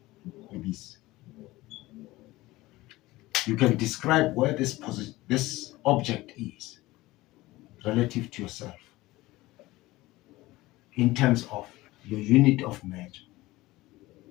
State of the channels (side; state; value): right; quieter; 18.9 dB